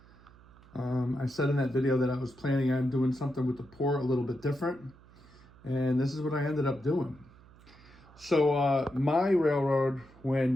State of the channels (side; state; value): right; noise; hum, 24 dB below the sound